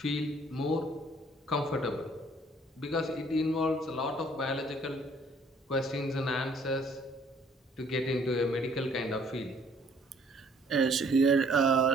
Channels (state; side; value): normal; both; correlation 0.60